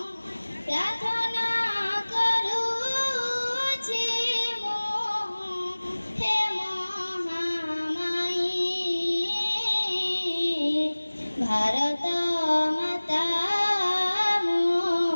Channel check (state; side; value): inverted; both; correlation -1.00